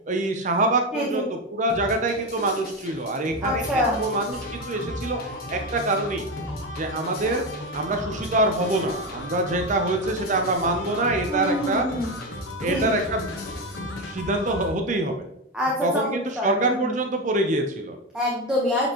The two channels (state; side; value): normal; both; correlation 0.14